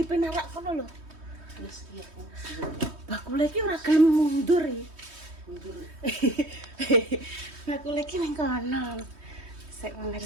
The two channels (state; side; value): late; left; 3.2 ms